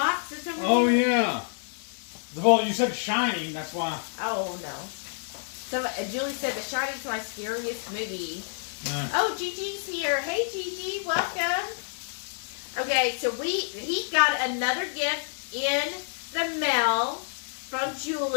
is over Oh, here? yeah. Well, you said Shining, that's why. Oh, no. So, Julie said The Shining's my scariest movie. Oh, Gigi's here. Hey, Gigi, welcome. Okay, so he got another gift in the mail from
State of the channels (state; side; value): silent; right; digital silence